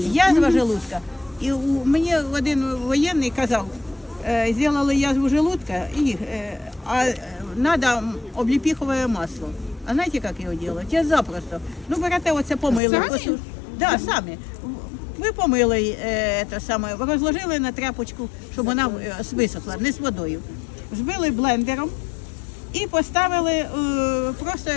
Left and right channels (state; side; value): drops out; right; at 12.8 s